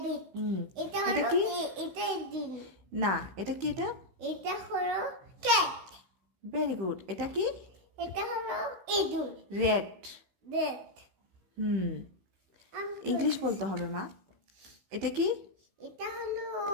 এটা এটা হলো কি? এটা দিন না, এটা কি? এটা হলো ক্যাট। Very good. এটা কি? এটা হলো ইঁদুর। রেড। রেড। ইংলিশ বলতে হবে মা। এটা কি? এটা হলো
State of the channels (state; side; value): late; left; 16 ms